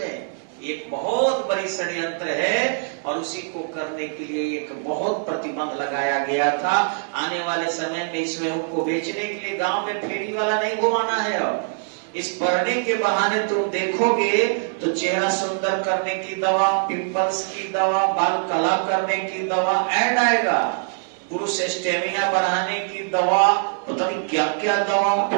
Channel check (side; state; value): left; silent; digital silence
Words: एक बहुत बड़ी षड्यंत्र है और उसी को करने के लिए एक बहुत प्रतिबंध लगाया गया था। आने वाले समय में इसमें उनको बेचने के लिए गांव में फेरी वाला नहीं घुमाना है। अब इस पढ़ने के बहाने तुम देखोगे तो चेहरा सुंदर करने की दवा, पिंपल्स की दवा, बाल कला करने की दवा ऐड आएगा, पुरुष स्टेमिना बढ़ाने की दवा, पता नहीं क्या क्या दवा,